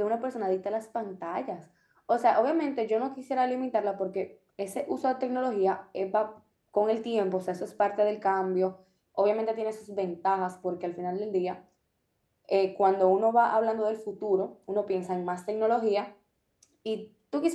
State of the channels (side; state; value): both; identical; correlation 1.00